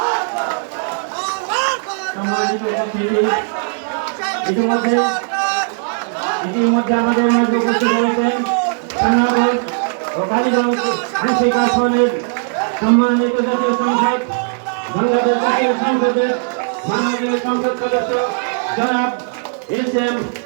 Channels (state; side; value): silent; left; digital silence